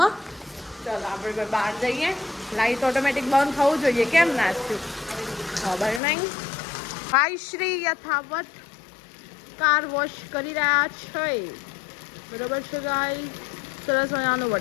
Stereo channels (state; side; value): drops out; right; at 6.0 s